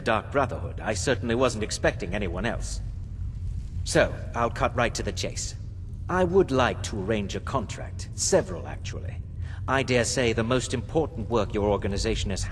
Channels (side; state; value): both; identical; correlation 1.00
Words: Dark Brotherhood. I certainly wasn't expecting anyone else. So, I'll cut right to the chase. I would like to arrange a contract. Several, actually. I dare say the most important work your organization has